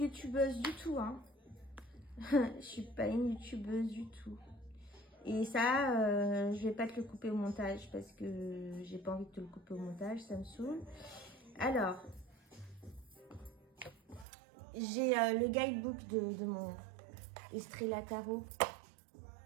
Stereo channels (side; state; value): left; drops out; at 14.2 s